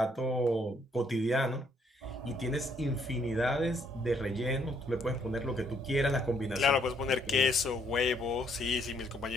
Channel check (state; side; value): normal; both; correlation 0.69